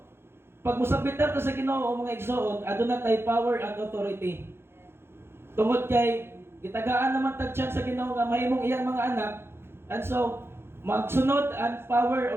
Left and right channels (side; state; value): left; late; 0.11 ms